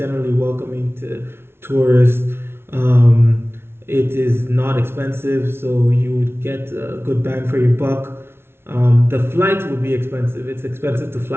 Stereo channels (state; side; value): late; left; 0.12 ms